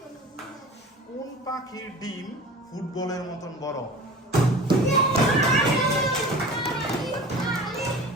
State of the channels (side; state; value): both; normal; correlation 0.38